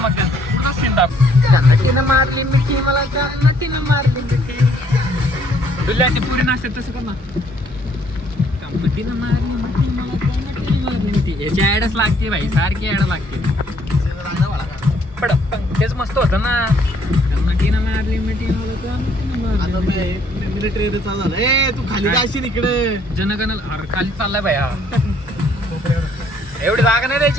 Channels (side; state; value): both; normal; correlation 0.65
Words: तुझा सीन दाख. त्यांना मारली मिठी मला त्यांना मारली मिठी. तुला ते पुरी नाचते तसं कर ना. मारली मिठी मला त्यांना मारली मिठी. याची ऍडच लागते भाई सारखी ऍड लागते. पड तेच मस्त होतं ना. त्यांना मारली मिठी मला आता मिलिटरी चालू झालं. ए तू खाली जाशील इकडे. जनगण खाली चाललाय भाई. हा एवढी जागा नाही